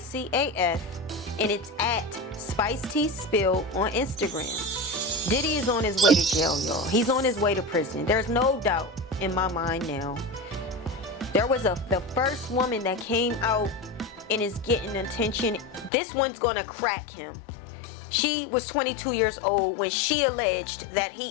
AF, and it's at Spice Tea Spill on Instagram. Diddy is on his way to jail, y'all. He's on his way to prison. There's no doubt in my mind now. There was the first woman that came out and is getting attention. This one's gonna crack him. She was 22 years old when she alleged that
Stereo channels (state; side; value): drops out; right; at 15.9 s